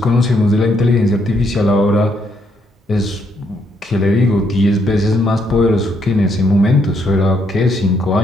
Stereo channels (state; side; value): normal; both; correlation 0.74